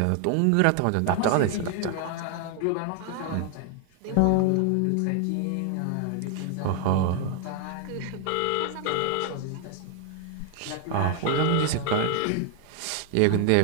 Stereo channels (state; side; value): different; both; correlation 0.00